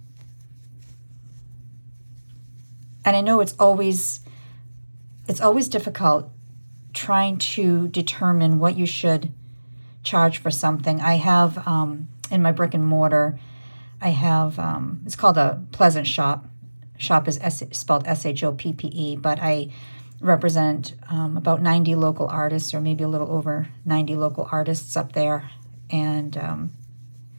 And I know it's always difficult trying to determine what you should charge for something. I have in my brick and mortar, I have it's called a Pleasant Shop. Shop is spelled SHOPPE, but I represent about 90 local artists, or maybe a little over 90 local artists up there, and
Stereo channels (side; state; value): both; inverted; correlation -1.00